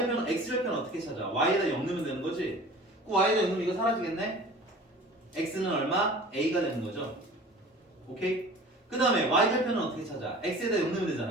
x절편 어떻게 찾아? y에다 0 넣으면 되는 거지? 그 y에다 0 넣으면 이거 사라지겠네? x는 얼마? a가 되는 거죠. 오케이? 그 다음에 y절편은 어떻게 찾아? x에다 0 넣으면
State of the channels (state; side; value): normal; both; correlation 0.43